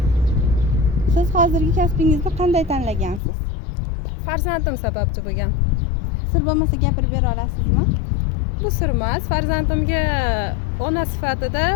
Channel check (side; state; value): right; drops out; at 3.2 s